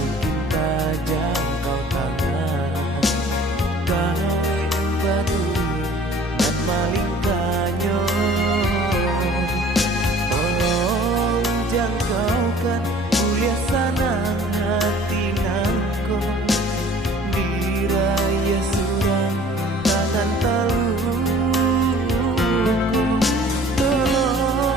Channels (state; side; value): normal; both; correlation 0.51